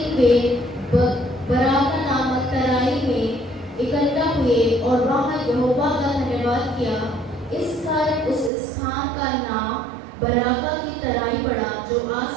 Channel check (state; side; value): drops out; left; at 8.5 s